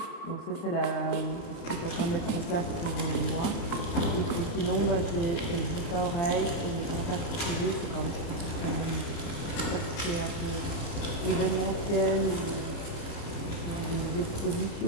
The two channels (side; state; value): right; late; 29 ms